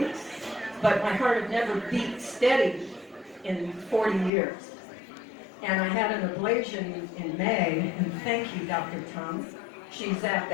But my heart had never beat steady in 40 years. And I had an ablation in May, and thank you, Dr. Tom. She's at the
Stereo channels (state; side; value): drops out; right; at 4.3 s